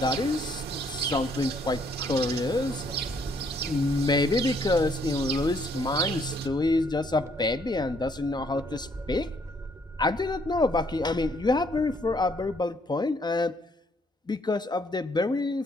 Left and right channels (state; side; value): normal; both; correlation 0.68